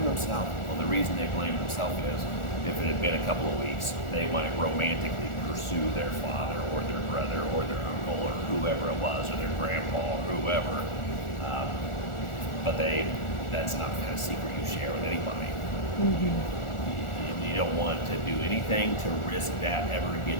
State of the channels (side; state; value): right; late; 1.4 ms